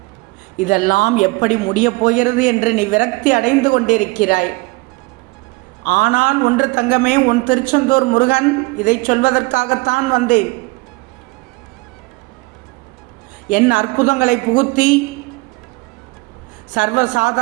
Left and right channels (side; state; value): left; quieter; 25.3 dB